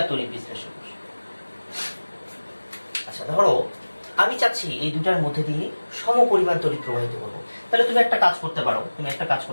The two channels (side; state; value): both; inverted; correlation -1.00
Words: তড়িৎ বিশ্লেষক কোষ। আচ্ছা, ধরো আমি চাচ্ছি এই দুটার মধ্যে দিয়ে সম পরিমাণ তড়িৎ প্রবাহিত করবো। তাহলে তুমি একটা কাজ